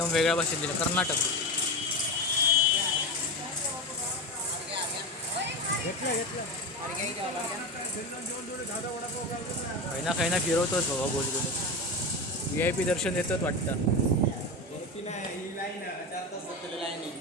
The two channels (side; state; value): both; normal; correlation 0.21